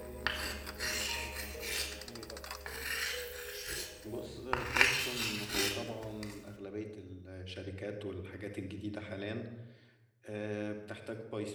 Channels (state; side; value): identical; both; correlation 1.00